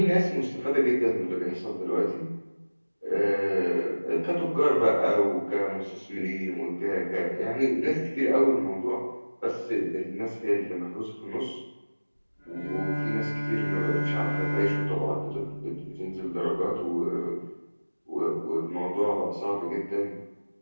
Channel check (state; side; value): inverted; both; correlation -1.00